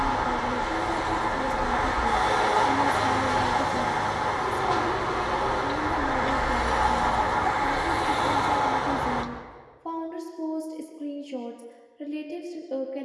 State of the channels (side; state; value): both; identical; correlation 1.00